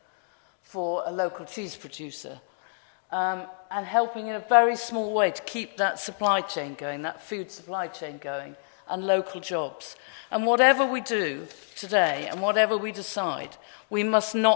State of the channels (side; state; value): right; silent; digital silence